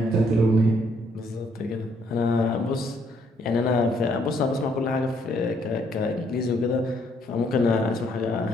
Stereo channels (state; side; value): normal; both; correlation 0.69